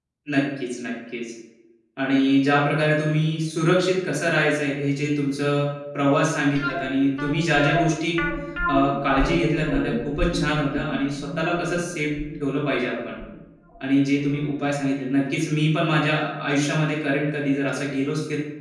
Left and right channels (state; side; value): identical; both; correlation 1.00